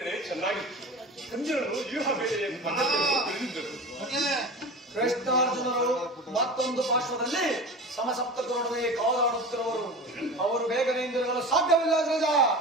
ಚೆನ್ನಾಗಿತ್ತು. ಕಂಜರನು ವ್ಯೂಹ ಬೇರೆಯ ಪದ್ಧತಿಯನ್ನು ತಿಳಿದಿದ್ದರು. ಕೃಷ್ಣಾರ್ಜುನರು ಮತ್ತೊಂದು ಪಾರ್ಶ್ವದಲ್ಲಿ ಸಮಸಪ್ತಕರೊಡನೆ ಕಾದಾಡುತ್ತಿರುವರು. ಅವರು ಬೇಗನೆ ಹಿಂದಿರುಗಲು ಸಾಧ್ಯವಿಲ್ಲ ಅಗ್ರಜ.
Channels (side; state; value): both; normal; correlation 0.32